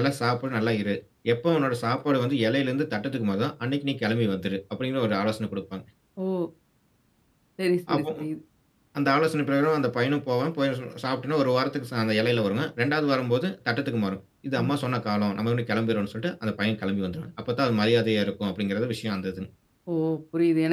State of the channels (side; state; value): both; identical; correlation 1.00